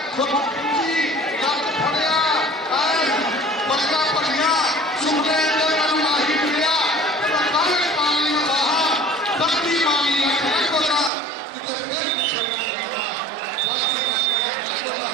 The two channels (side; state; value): left; drops out; at 11.1 s